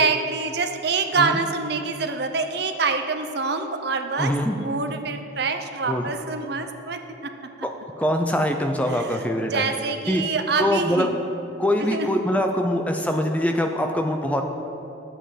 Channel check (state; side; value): normal; both; correlation 0.36